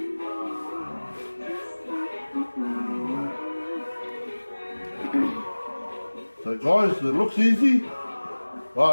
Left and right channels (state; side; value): inverted; both; correlation -1.00